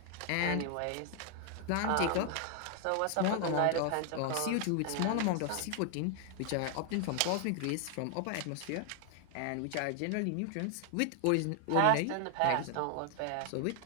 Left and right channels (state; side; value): different; both; correlation 0.00